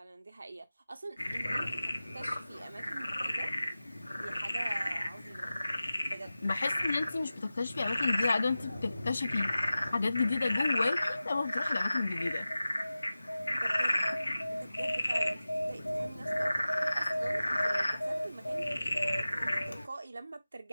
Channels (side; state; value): both; inverted; correlation -0.96